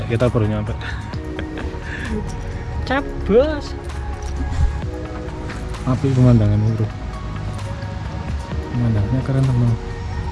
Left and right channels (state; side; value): identical; both; correlation 1.00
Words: kita baru nyampe. Cabos. Api pemandangan bro. Pemandangannya keren teman.